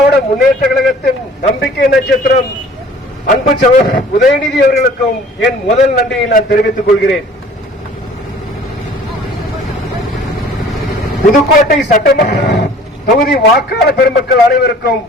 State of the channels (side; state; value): both; normal; correlation 0.50